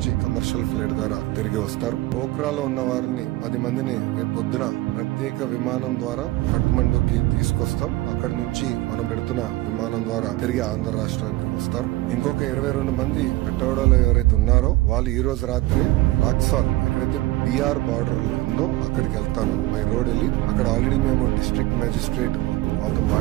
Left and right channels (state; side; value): quieter; left; 18.5 dB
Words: కమర్షియల్ ఫ్లైట్ ద్వారా తిరిగి వస్తారు. పోఖ్రాలో ఉన్న వారిని 10 మందిని రేపు పొద్దున ప్రత్యేక విమానం ద్వారా కఠ్మండుకి తీసుకొస్తాం. అక్కడ నుంచి మనం పెడుతున్న విమానం ద్వారా తిరిగి ఆంధ్ర రాష్ట్రానికి వస్తారు. ఇంకొక 22 మంది పెట్టవాడలో ఎవరైతే ఉన్నారో వాళ్ళు ఈ రోజు రాత్రి రాక్సాల్ ఎక్కడైతే బీఆర్ బార్డర్ ఉందో అక్కడికి వెళ్తాను బై రోడ్ వెళ్ళి. అక్కడ ఆల్రెడీ మేము డిస్ట్రిక్ట్ మేజిస్ట్రేట్ వాళ్ళతో